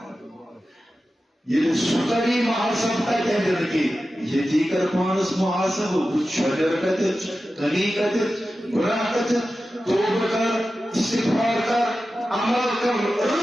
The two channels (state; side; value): normal; both; correlation 0.93